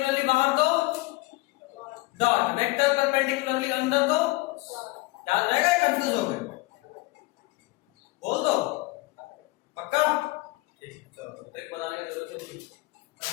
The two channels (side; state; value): right; quieter; 22.2 dB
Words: बाहर तो डॉट, वेक्टर परपेंडिकुलरली अंदर तो याद रहेगा, कंफ्यूज हो गए? बोल दो पक्का? ठीक, चलो ट्रिक बनाने की जरूरत नहीं,